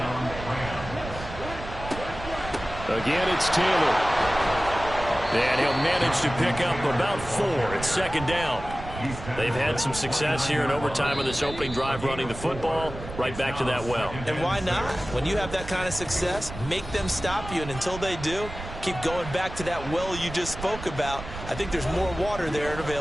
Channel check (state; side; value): noise; right; rumble, 11 dB below the sound